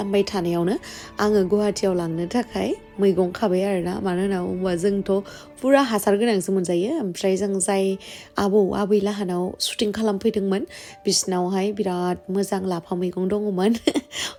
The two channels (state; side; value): identical; both; correlation 1.00